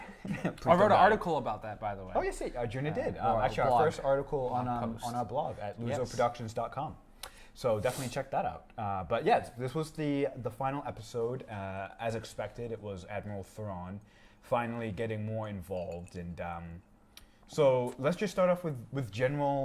wrote an article about that, by the way. Oh, yes, Juna did. Actually, our first article on our blog at LuZoProductions.com. So definitely check that out. But yeah, this was the final episode. As expected, it was Admiral Thrawn finally getting more involved, and so let's just start off with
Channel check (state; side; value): identical; both; correlation 1.00